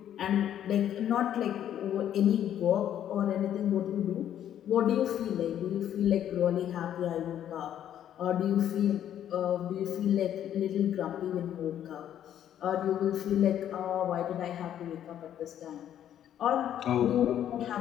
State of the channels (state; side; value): quieter; right; 10.6 dB